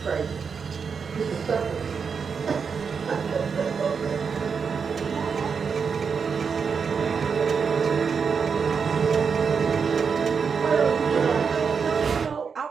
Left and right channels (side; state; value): left; quieter; 5.9 dB